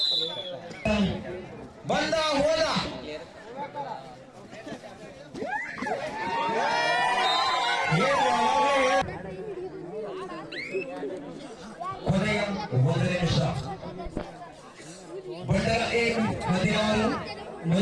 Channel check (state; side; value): identical; both; correlation 1.00